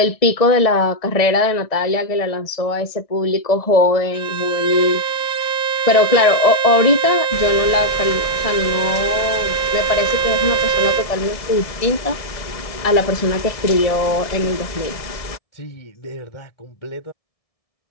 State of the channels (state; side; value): late; right; 1.7 ms